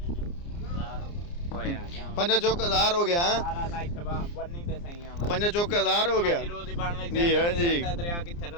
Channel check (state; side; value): late; right; 29 ms